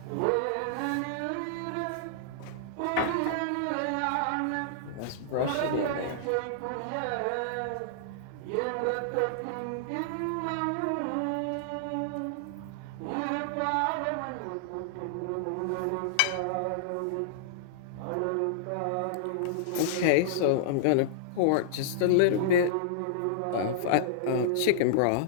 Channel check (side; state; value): both; different; correlation -0.01